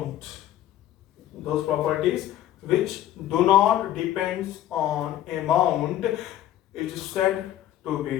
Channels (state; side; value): quieter; right; 12.5 dB